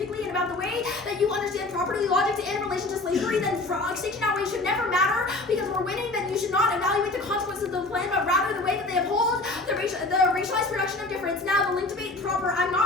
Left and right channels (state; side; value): quieter; right; 3.0 dB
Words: and about the way that you understand property logic in relation to slavery. Then extinction outweighs should never matter because we're winning. Then you should not evaluate the consequences of the plan, but rather the way that they uphold the racialized production of difference. Now the link debate proper, I'm